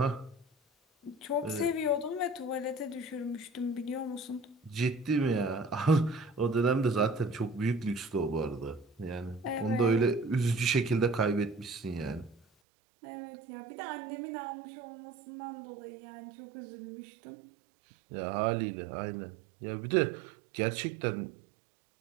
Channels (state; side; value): drops out; left; at 12.5 s